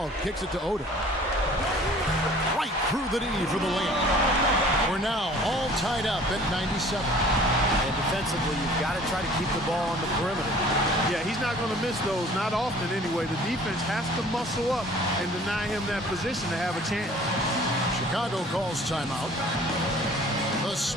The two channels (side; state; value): both; normal; correlation 0.50